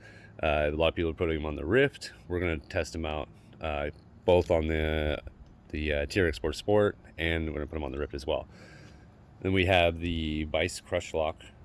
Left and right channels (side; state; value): both; identical; correlation 1.00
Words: A lot of people are putting them on the Rift. We're going to test them out both on the TRX4-SPORT, and we're going to put them on the Rift as well. Then we have the Vice Crushlock